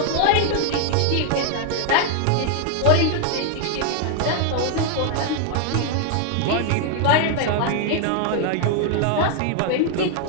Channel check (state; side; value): different; both; correlation 0.00